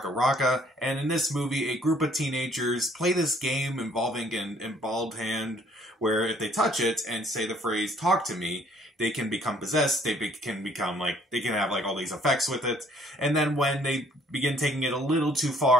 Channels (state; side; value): normal; both; correlation 0.61